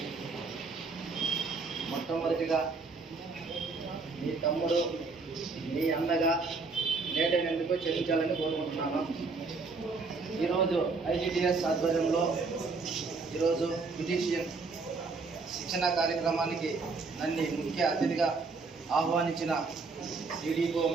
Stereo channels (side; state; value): left; quieter; 4.2 dB